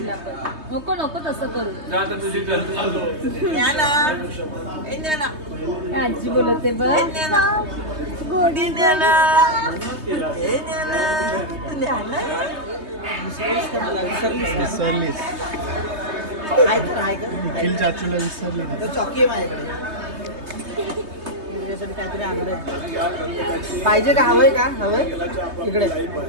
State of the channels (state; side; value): late; left; 3.2 ms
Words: पण नको नको तसं करू. जा आता तुझी आजी बोलते बघ विसरलीस निखिल चाचूला विसरली चॉकी आहे माझ्याकडे तुझ्यासाठी काहीतरी आणलंय. पाहिजे का हवंय का हवंय इकडे